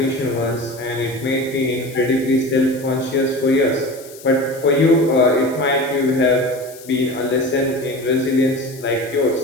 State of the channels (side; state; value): left; noise; hiss, 19 dB below the sound